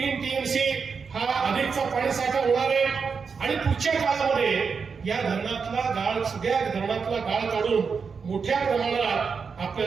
TMC हा अधिकचा पाणी साठा होणार आहे आणि पुढच्या काळामध्ये या धरणातला गाळ, सगळ्या धरणातला गाळ काढून मोठ्या प्रमाणात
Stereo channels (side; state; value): left; quieter; 5.6 dB